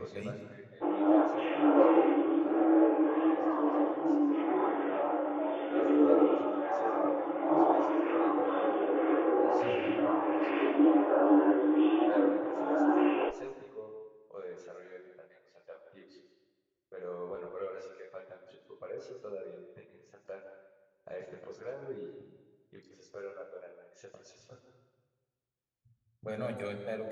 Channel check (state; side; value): identical; both; correlation 1.00